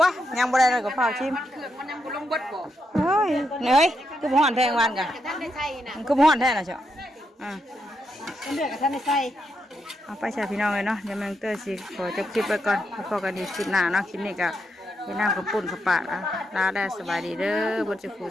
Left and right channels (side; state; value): both; normal; correlation 0.82